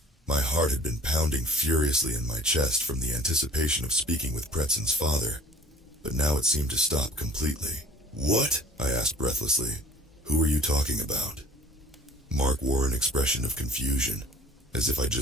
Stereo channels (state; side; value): normal; both; correlation 0.49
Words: My heart had been pounding furiously in my chest from the anticipation of speaking with Preston's father, but now it seemed to stop completely. "What?" I asked breathlessly. "Who are you talking about?" Mark wore an expression of confusion, as if I'd